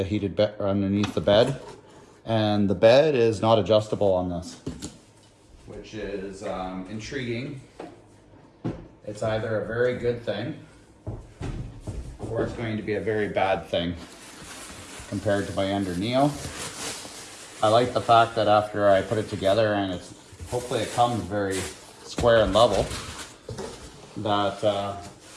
heated bed, or underneath the bed. And the bed is not adjustable on this, which is intriguing. It's either a very good thing or it's going to be a very bad thing compared to my Ender Neo. I like the fact that after I put it together and hopefully it comes very square and level, that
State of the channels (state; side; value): identical; both; correlation 1.00